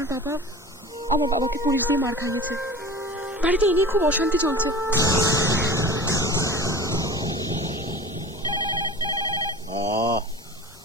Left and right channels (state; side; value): normal; both; correlation 0.37